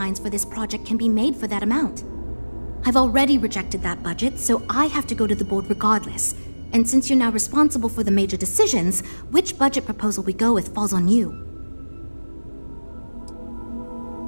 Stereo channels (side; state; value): both; inverted; correlation -1.00